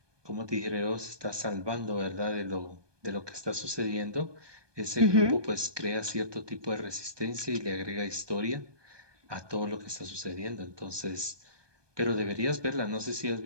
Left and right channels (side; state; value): left; late; 1.2 ms